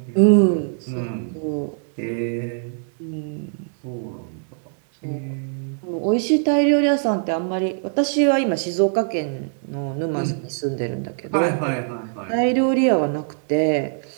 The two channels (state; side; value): silent; left; digital silence